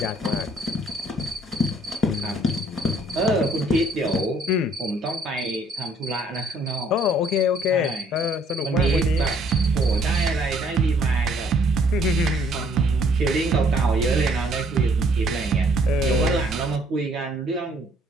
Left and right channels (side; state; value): both; normal; correlation 0.63